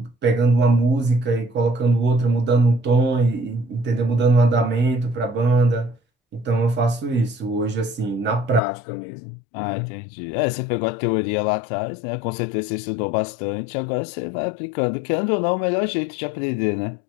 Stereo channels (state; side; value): drops out; right; at 8.6 s